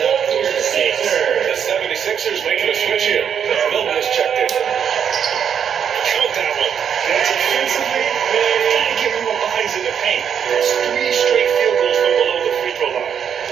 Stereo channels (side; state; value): left; quieter; 8.0 dB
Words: up their mistakes. The 76ers making a switch here. Milton has checked in. Count that one. That's offensively, gotta get more bodies in the paint. That's 3 straight field goals from below the free throw line.